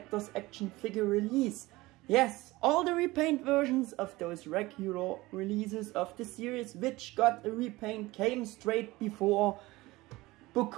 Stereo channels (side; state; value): left; quieter; 20.0 dB